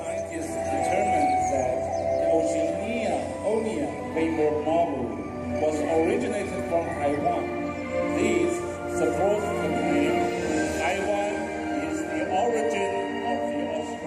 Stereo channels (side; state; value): both; identical; correlation 1.00